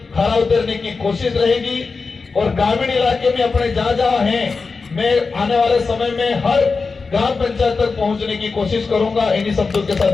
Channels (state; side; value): quieter; right; 4.4 dB